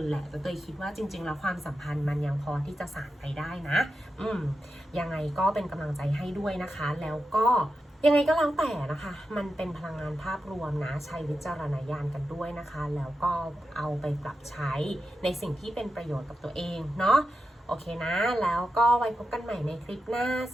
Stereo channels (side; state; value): both; normal; correlation 0.89